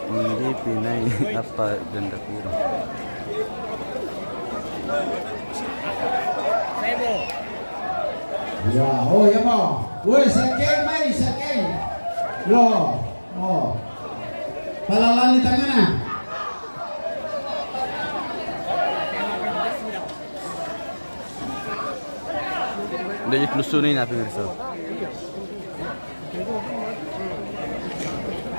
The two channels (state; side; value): inverted; both; correlation -1.00